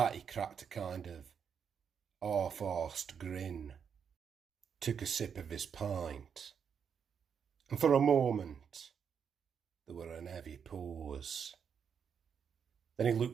he cracked a kind of half-arsed grin, took a sip of his pint, and for a moment there were an heavy pause. Then he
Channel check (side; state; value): left; quieter; 7.1 dB